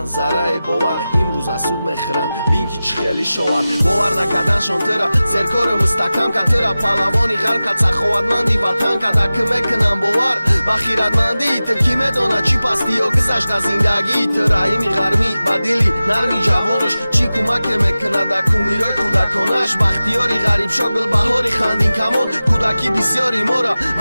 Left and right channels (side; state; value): both; inverted; correlation -0.96